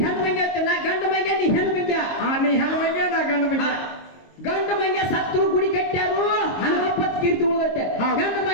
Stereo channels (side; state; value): right; late; 22 ms